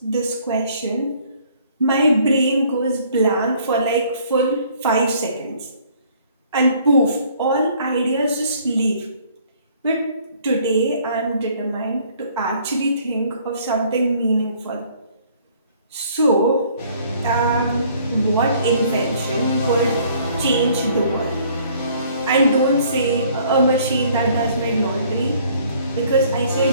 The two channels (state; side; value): inverted; both; correlation -0.59